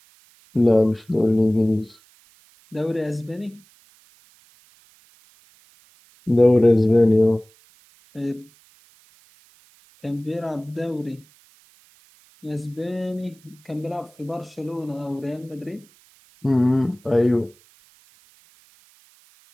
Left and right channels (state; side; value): noise; right; hiss, 30 dB below the sound